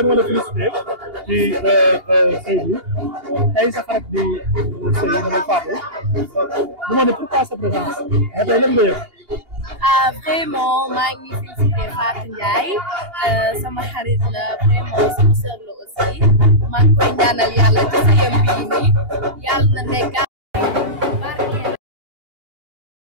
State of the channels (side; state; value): left; late; 2.8 ms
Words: bi ma la félicité ci sëy bi tey sa xarit di sëy mooy Fatou du ma ne pourquoi sa présence mais tey lan nga yëg. Vraiment maa ngi félicité Fatou Ndiaye sama xarit la vraiment sama sœur la aussi maa ngi koy ñaanal yàlla ci sëyam bii nii yàlla na nekk barkeel